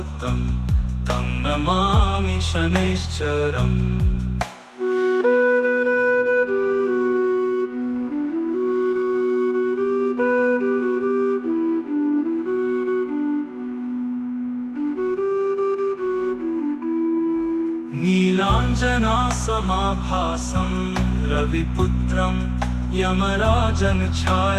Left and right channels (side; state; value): both; identical; correlation 1.00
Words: तं नमामि शनैश्चरम्। नीलाञ्जनासमाभासं रविपुत्रं यमराजन्